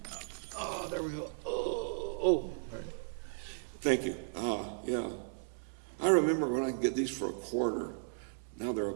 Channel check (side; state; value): left; silent; 54 dB below the other